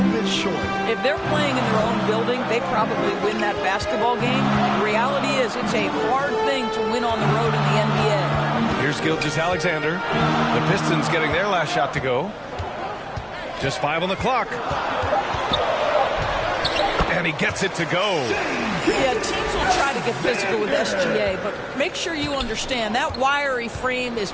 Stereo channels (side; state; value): both; identical; correlation 1.00